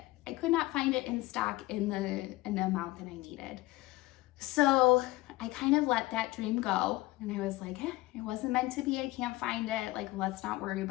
I could not find it in stock in the amount that I needed. So I kind of let that dream go, and I was like, it wasn't meant to be. I can't find it. Like, let's not worry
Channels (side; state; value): right; quieter; 18.9 dB